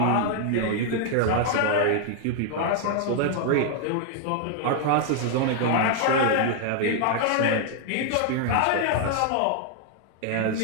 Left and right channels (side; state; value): both; different; correlation 0.00